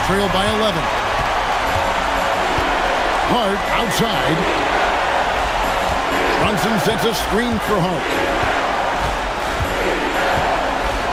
trail by 11. Hart outside. Brunson sets a screen for Hart.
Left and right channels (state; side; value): identical; both; correlation 1.00